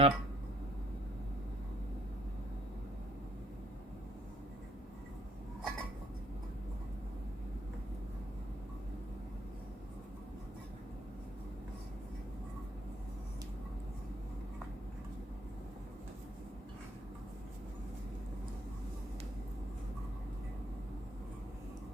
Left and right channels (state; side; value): normal; both; correlation 0.65